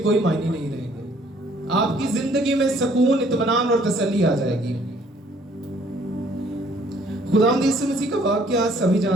معنی نہیں رہیں گے. آپ کی زندگی میں سکون, اطمینان اور تسلی آ جائے گی. خداوند یسوع مسیح کا واقعہ سبھی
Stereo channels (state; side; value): normal; both; correlation 0.61